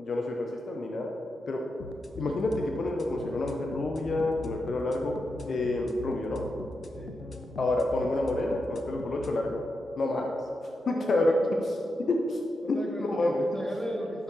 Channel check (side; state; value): both; normal; correlation 0.87